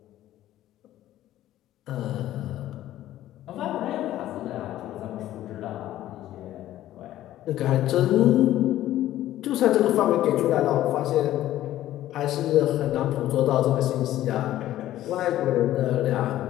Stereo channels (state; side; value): quieter; right; 13.7 dB